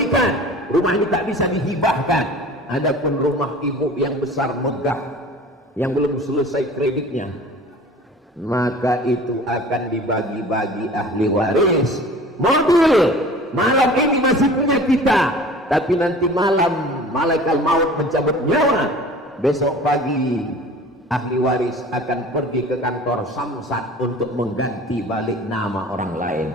rumah ini tak bisa dihibahkan. Adapun rumah ibu yang besar megah, yang belum selesai kreditnya, maka itu akan dibagi-bagi ahli waris. Mobil malam ini masih punya kita, tapi nanti malam malaikat maut mencabut nyawa. Besok pagi ahli waris akan pergi ke kantor Samsat untuk mengganti balik nama orang lain.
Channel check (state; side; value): normal; both; correlation 0.43